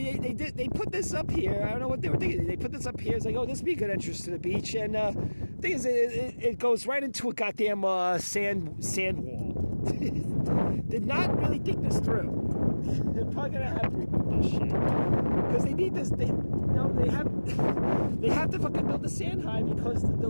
they put this up here. I don't know what they were thinking. They put this up here. It's like, oh, this would be a good entrance to the beach. And the thing is, it goes right into a goddamn sand wall. Did not really think this through. They're probably gonna have to remove this shit because they need this. They have to fucking build the sand high because the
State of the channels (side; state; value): both; inverted; correlation -1.00